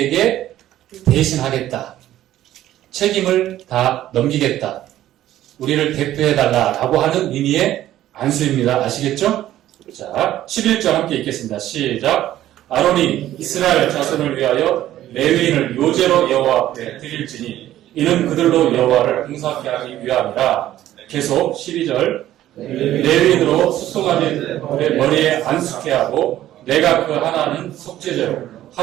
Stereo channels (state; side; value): quieter; left; 13.2 dB